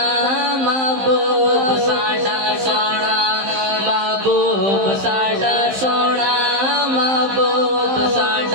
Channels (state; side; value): late; left; 15 ms